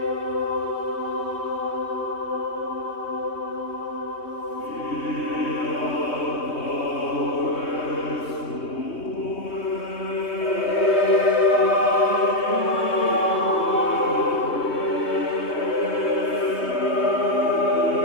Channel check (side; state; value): right; late; 3.2 ms